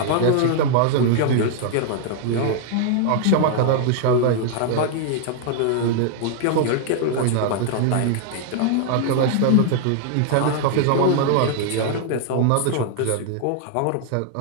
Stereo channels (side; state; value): both; different; correlation 0.00